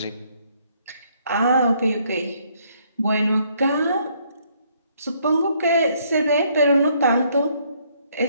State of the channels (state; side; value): inverted; both; correlation -0.68